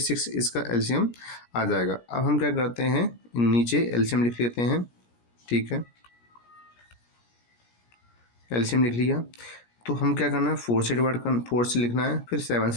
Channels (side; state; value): right; late; 17 ms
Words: इसका एलसीएम आ जाएगा। अब हम क्या करते हैं, नीचे एलसीएम लिख लेते हैं। ठीक है, एलसीएम लिख लिया। तो हम क्या करना है, 4 से लिखना है, फिर 7